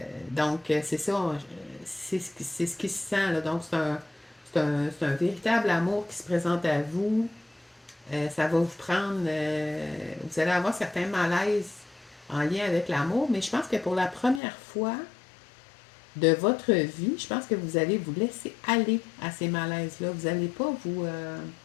Donc, c'est ça, c'est ce qui se sent. Là. Donc, c'est un véritable amour qui se présente à vous. Ça va vous prendre... vous allez avoir certains malaises en lien avec l'amour, mais je pense que pour la première fois de votre vie, je pense que vous allez vous laisser aller à ces malaises-là. Vous n'allez pas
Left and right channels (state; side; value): drops out; right; at 14.4 s